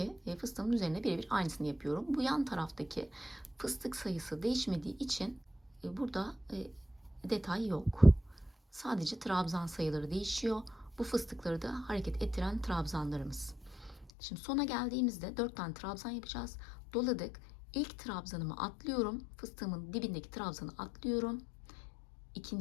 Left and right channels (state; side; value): drops out; right; at 14.1 s